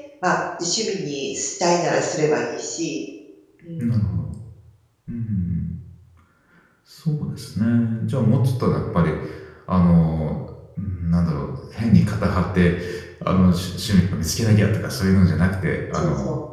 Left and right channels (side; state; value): both; identical; correlation 1.00